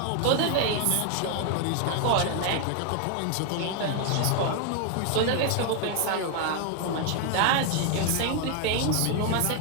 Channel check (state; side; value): different; both; correlation 0.01